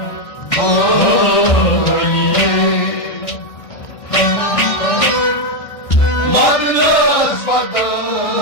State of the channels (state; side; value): late; right; 1.6 ms